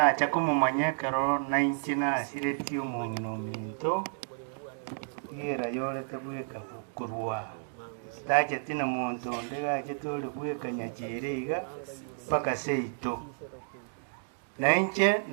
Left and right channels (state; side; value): silent; left; digital silence